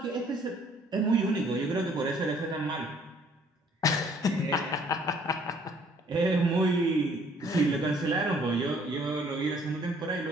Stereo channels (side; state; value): both; normal; correlation 0.60